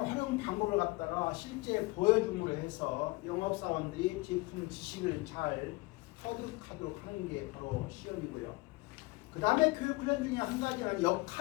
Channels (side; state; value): right; quieter; 23.5 dB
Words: 방법을 갖다가 실제 보여줌으로 해서 영업사원들이 제품 지식을 잘 터득하도록 하는 게 바로 시연이고요. 그 다음에 교육훈련 중에 한 가지는